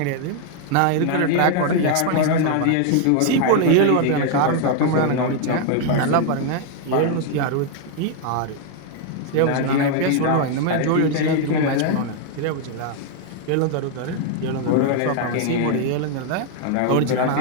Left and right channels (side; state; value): both; different; correlation 0.00